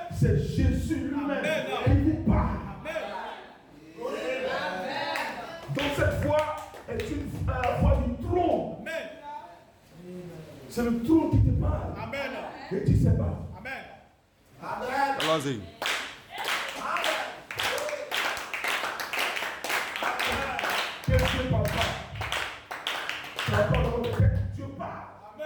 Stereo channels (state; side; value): identical; both; correlation 1.00